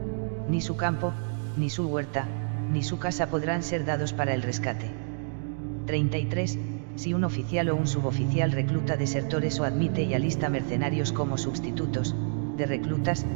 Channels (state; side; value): silent; left; digital silence